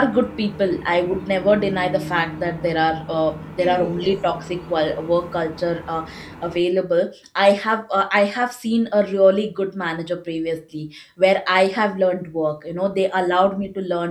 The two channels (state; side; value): identical; both; correlation 1.00